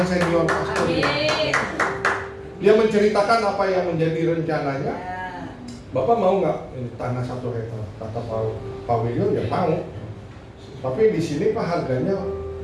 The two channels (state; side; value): identical; both; correlation 1.00